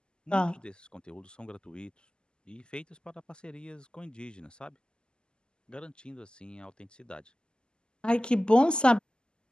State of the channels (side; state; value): right; late; 0.047 ms